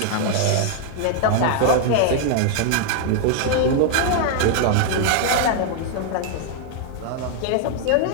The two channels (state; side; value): different; both; correlation 0.00